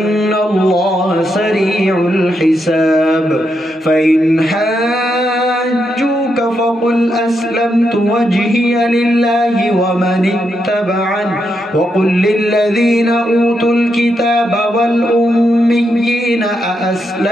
الله سريع الحساب فإن حاجوك فقل أسلمت وجهي لله ومن اتبعني وقل للذين أوتوا الكتاب والأميين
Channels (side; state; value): both; normal; correlation 0.82